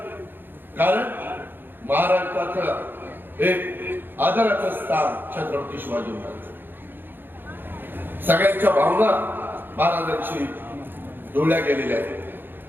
कारण महाराष्ट्राचं एक आदराचं स्थान छत्रपती शिवाजी महाराज. सगळ्यांच्या भावना महाराजांशी जोडल्या गेलेल्या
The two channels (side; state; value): left; late; 0.097 ms